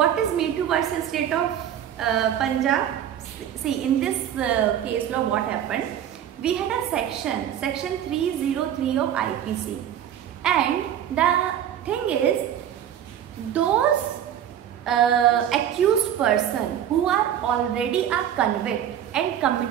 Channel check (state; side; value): quieter; left; 10.1 dB